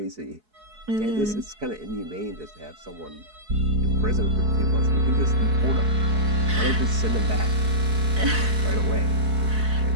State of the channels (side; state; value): left; late; 4.7 ms